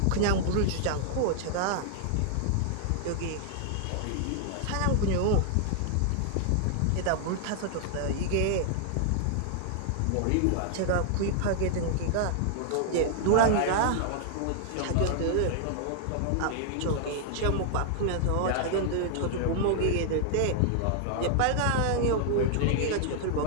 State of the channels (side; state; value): both; different; correlation 0.00